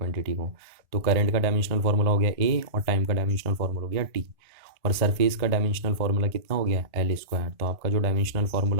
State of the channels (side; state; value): left; late; 1.4 ms